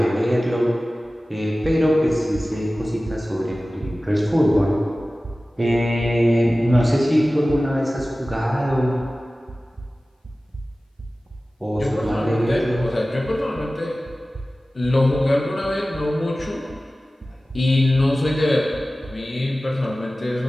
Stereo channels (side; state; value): both; normal; correlation 0.96